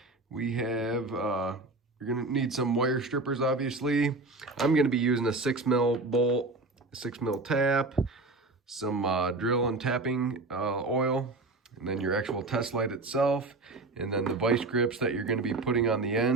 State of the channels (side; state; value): left; quieter; 3.1 dB